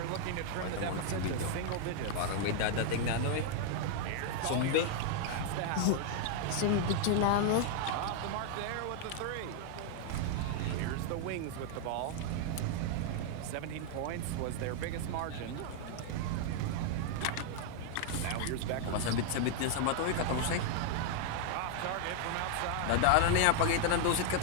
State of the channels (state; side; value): different; both; correlation 0.00